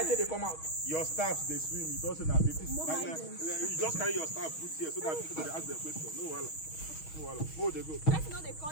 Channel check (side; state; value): right; late; 6.3 ms